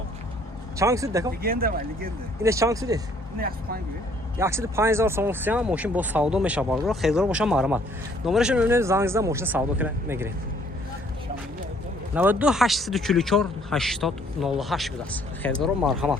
чанд шуд дако инеш чанд шуд 105000 сом функцион мошин бо савдо мешавад хезро боша марҳамат номераш мебинед зангизда мошин савдо мегиред 92 844 80 08 будааст хезро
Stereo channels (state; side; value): normal; both; correlation 0.62